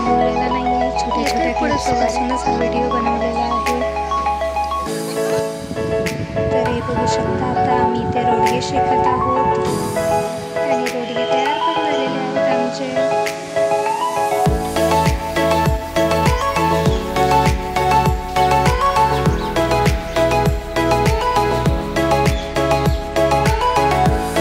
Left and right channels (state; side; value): identical; both; correlation 1.00